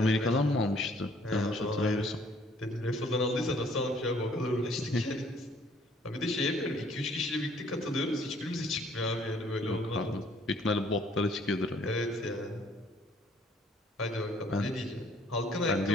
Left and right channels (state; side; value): normal; both; correlation 0.61